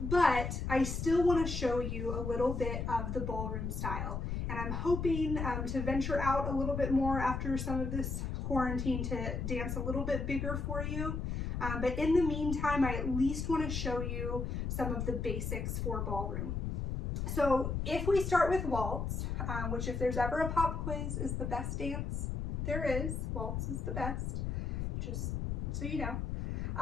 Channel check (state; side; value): noise; left; rumble, 2 dB below the sound